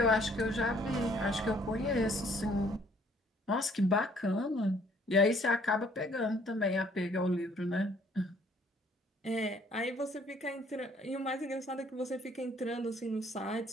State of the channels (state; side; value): normal; both; correlation 0.61